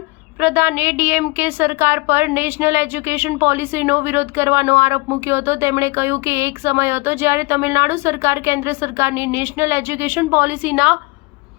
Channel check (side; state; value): right; quieter; 25.3 dB